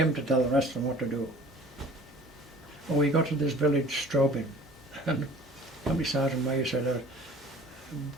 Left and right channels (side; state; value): both; normal; correlation 0.47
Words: to tell the rest of them what to do. When we got to this village, Straubing, and company sergeant major said,